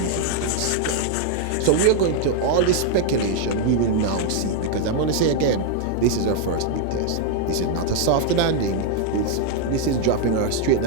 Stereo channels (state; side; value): different; both; correlation 0.00